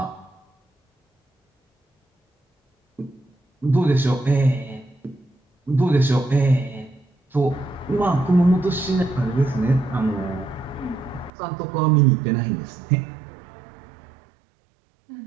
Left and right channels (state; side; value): drops out; left; at 11.3 s